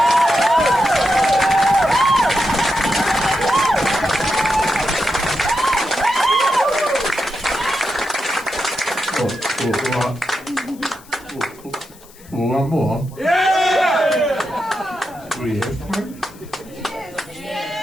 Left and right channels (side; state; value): left; noise; hiss, 24 dB below the sound